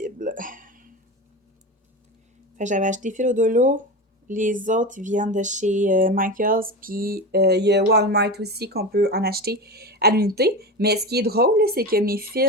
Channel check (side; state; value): both; normal; correlation 0.24